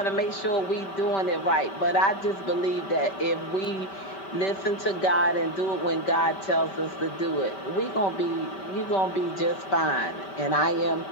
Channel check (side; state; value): right; late; 5.2 ms